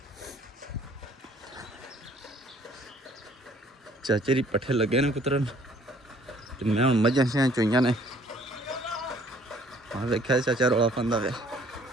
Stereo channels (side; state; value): both; normal; correlation 0.58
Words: चाचे दी पट्ठे लगे ने कुतरन, तो मैं हूँ मझां शा चोईया ने। हाँ वेख्या चाचा रौला पांदा वे।